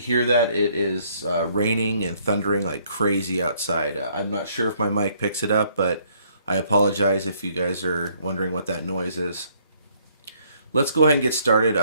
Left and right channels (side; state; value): both; inverted; correlation -0.66